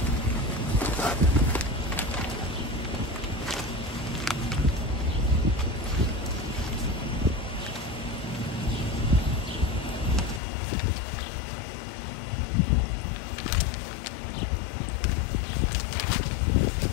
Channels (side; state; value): right; drops out; at 10.4 s